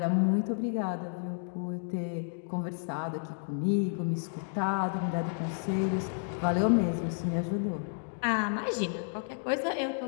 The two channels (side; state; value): right; silent; digital silence